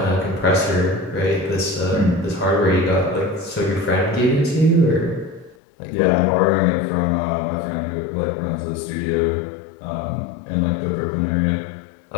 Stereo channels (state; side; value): drops out; right; at 5.6 s